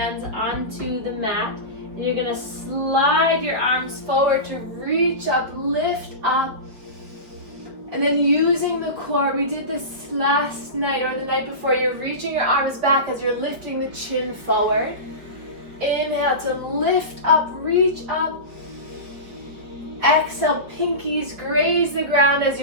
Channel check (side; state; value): left; late; 5.1 ms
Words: onto the mat. And you're gonna slide your arms forward to reach up, lift up. And then using the core, we did this last night or the night before, you're reaching your arms back as you're lifting the chin forward. Inhale to lift up, reach up. Exhale, pinkies graze the ground as